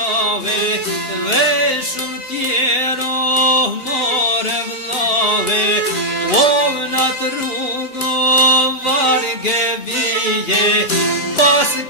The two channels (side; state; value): right; late; 2.8 ms